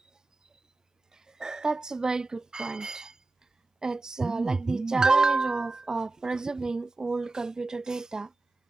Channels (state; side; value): quieter; left; 3.2 dB